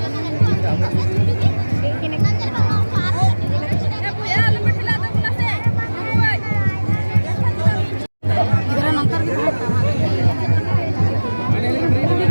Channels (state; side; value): inverted; both; correlation -1.00